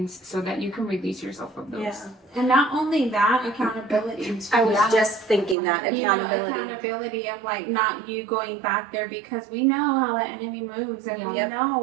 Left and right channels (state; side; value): drops out; left; at 5.6 s